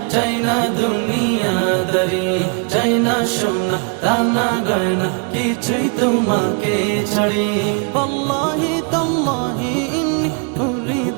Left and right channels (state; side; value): quieter; left; 37.3 dB